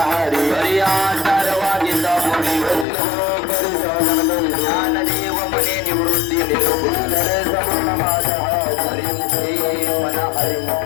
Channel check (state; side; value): drops out; right; at 2.9 s